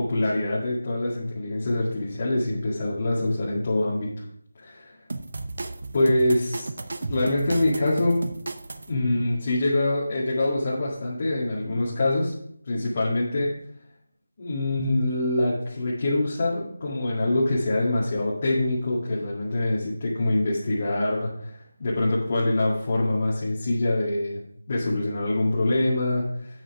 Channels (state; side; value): inverted; both; correlation -0.92